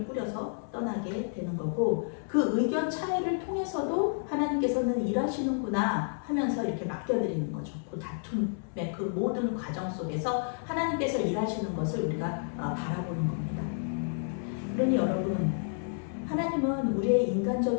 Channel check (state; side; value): silent; right; 58 dB below the other